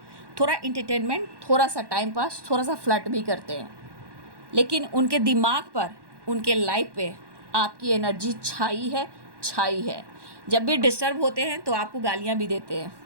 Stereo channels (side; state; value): left; late; 1.1 ms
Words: थोड़ा इंटरटेनमेंट, थोड़ा सा टाइम पास, थोड़ा सा फ्लर्ट भी करते हैं, लेकिन उनके दिमाग पर, उनके लाइफ पे आपकी एनर्जी छाई है, छाई है। जब भी डिस्टर्ब होते हैं तो आपको गालियाँ भी देते हैं,